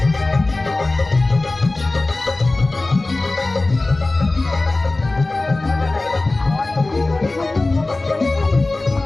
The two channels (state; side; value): quieter; right; 3.1 dB